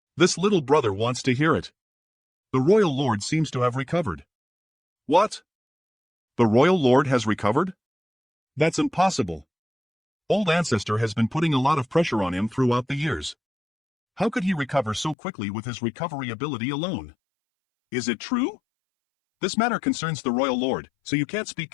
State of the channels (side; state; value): right; drops out; at 15.2 s